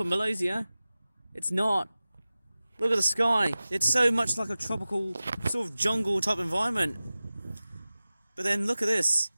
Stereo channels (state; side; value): inverted; both; correlation -0.97